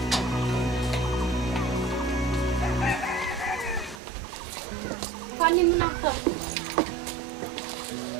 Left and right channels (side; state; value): left; drops out; at 4.0 s